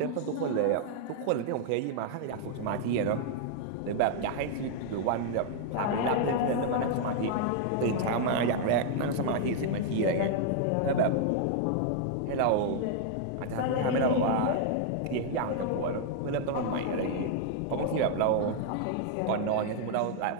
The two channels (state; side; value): different; both; correlation -0.01